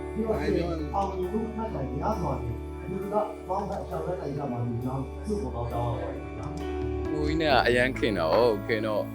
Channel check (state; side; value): identical; both; correlation 1.00